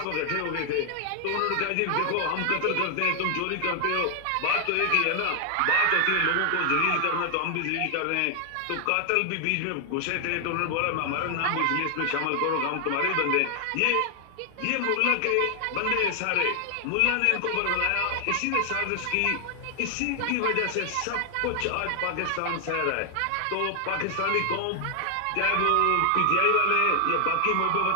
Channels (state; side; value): different; both; correlation 0.00